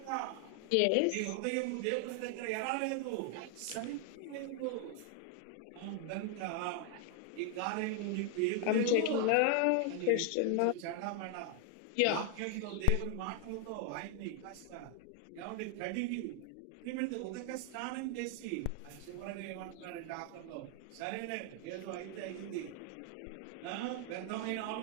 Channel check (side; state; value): both; different; correlation 0.00